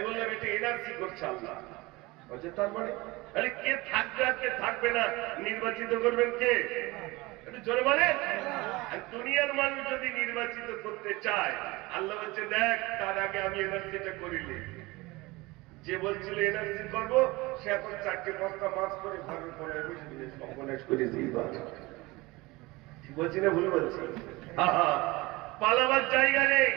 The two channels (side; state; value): left; quieter; 22.2 dB